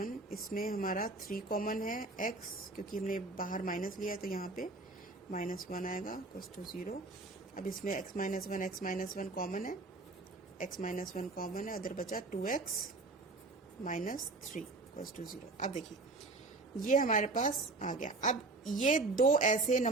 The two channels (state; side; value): quieter; left; 3.3 dB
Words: इसमें हमारा 3 कॉमन है, x क्योंकि हमने बाहर माइनस लिया है तो यहाँ पे माइनस 1 आएगा इक्वल्स टू 0। अब इसमें x माइनस 1 कॉमन है, x माइनस 1 कॉमन है, उधर बचा 2x माइनस 3 इक्वल्स टू 0। अब देखिए ये हमारे पास आ गया। अब ये दो ऐसे